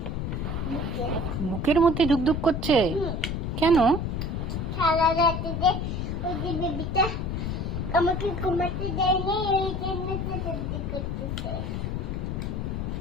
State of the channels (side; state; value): left; noise; rumble, 2 dB below the sound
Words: বুকের মধ্যে দুক করছে কেন? সারা রাতে যে ওই যে বেবিটা আমাকে ঘুমাতে দেয়নি, এই জন্য দুক করতেছে।